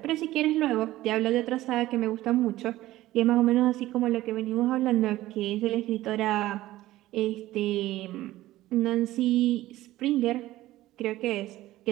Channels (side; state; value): left; quieter; 16.0 dB